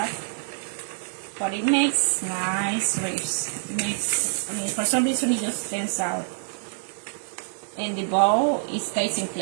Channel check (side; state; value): left; silent; 61 dB below the other